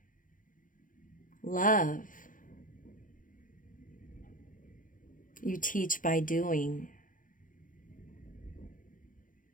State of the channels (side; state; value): right; late; 0.39 ms